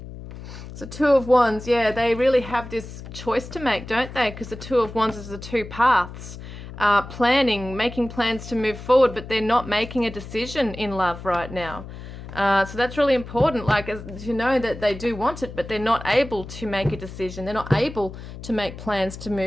So 2 of Wands, yeah, they really have this choice to make, don't they? Because the 2 of Wands is the 2 paths. Planning, making plans to move forward, but they're not making a decision in love right now. So that's really important, like to know that they do want it, but they're not able to make a decision. They're not able to make plans to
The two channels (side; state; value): left; noise; hum, 12 dB below the sound